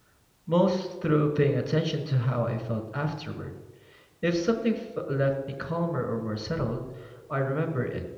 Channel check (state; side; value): identical; both; correlation 1.00